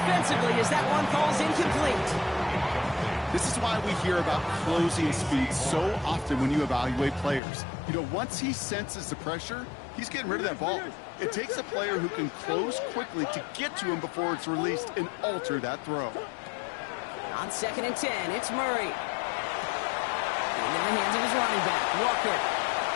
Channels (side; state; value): right; drops out; at 7.4 s